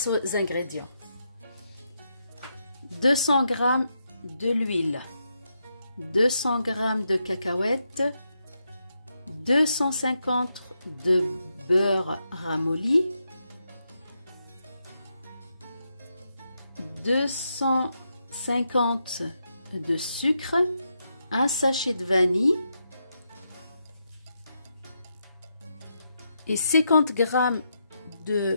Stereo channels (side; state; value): both; inverted; correlation -0.83